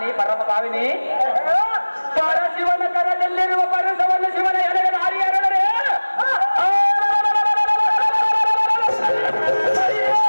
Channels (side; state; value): both; inverted; correlation -1.00